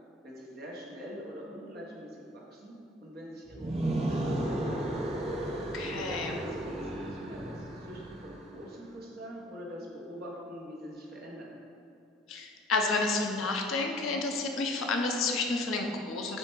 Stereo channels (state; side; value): normal; both; correlation 0.52